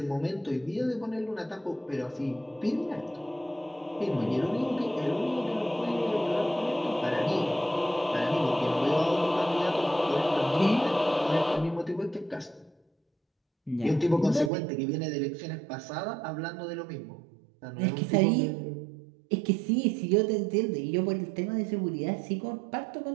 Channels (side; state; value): left; drops out; at 14.5 s